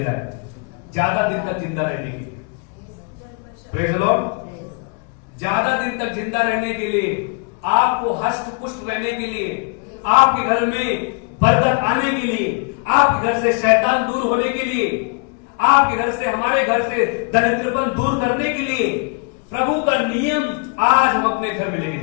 है ज्यादा दिन तक जिंदा रहने के लिए। Praise the Lord. ज्यादा दिन तक जिंदा रहने के लिए, आपको हष्ट पुष्ट रहने के लिए, आपके घर में बरकत आने के लिए, आपके घर से शैतान दूर होने के लिए, आपके घर से, हमारे घर से दरिद्रपन दूर करने के लिए, प्रभु का नियम आज हम अपने घर में लेके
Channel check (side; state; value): right; quieter; 35.4 dB